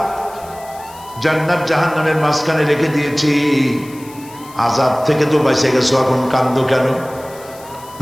জান্নাত জাহান্নামের মাঝখানে রেখে দিয়েছি, আযাব থেকে তো বেঁচে গেছো, এখন কান্দো কেন?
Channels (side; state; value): left; noise; hiss, 21 dB below the sound